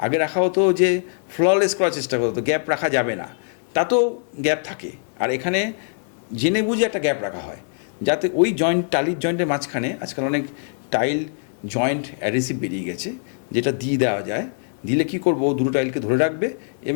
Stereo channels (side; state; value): right; silent; digital silence